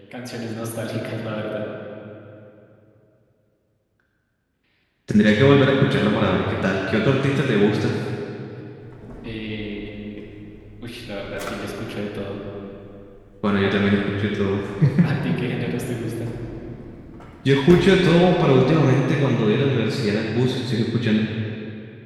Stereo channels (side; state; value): both; identical; correlation 1.00